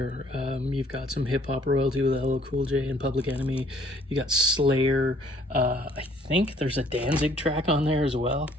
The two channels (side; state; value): both; normal; correlation 0.61